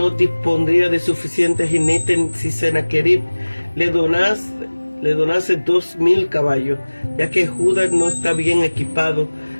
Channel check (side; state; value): both; inverted; correlation -1.00